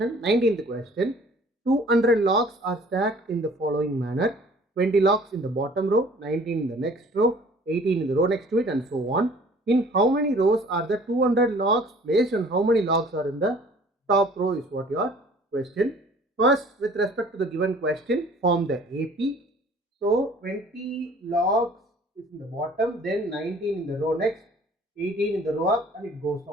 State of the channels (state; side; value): normal; both; correlation 0.52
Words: 19th question. 200 logs are stacked in the following manner. 20 logs in the bottom row, 19 in the next row, 18 in the row next to it, and so on. In how many rows are the 200 logs placed and how many logs are in the top row is what your question. First, with respect to the given question, form the AP. So 20 logs is in the bottom, then 19 in the row next, 18 in the row up, and it goes